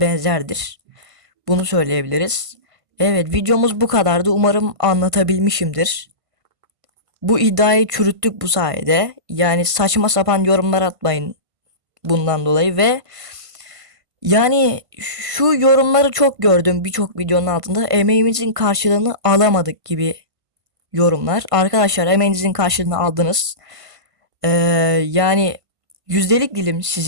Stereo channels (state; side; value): late; left; 1.5 ms